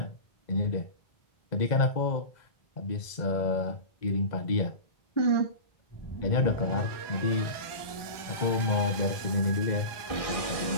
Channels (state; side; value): late; right; 1.2 ms